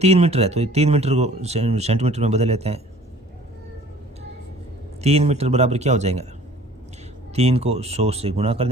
मीटर है, तो 3 मीटर को सेंटीमीटर में बदल लेते हैं। 3 मीटर बराबर क्या हो जाएगा? 3 को 100 से गुणा कर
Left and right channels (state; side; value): normal; both; correlation 0.51